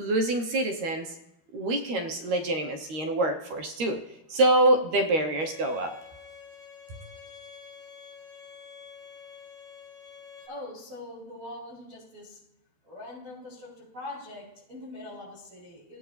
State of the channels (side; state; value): left; late; 13 ms